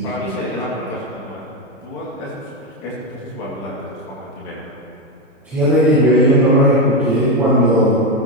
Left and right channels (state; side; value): normal; both; correlation 0.10